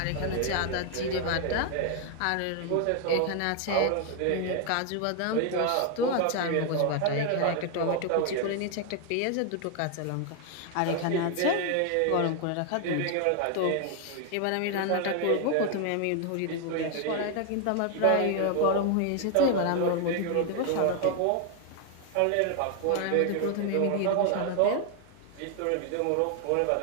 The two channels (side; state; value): both; different; correlation 0.00